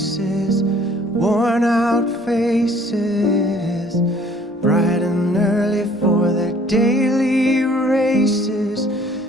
worn out faces, bright and early for their daily races,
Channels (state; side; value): normal; both; correlation 0.57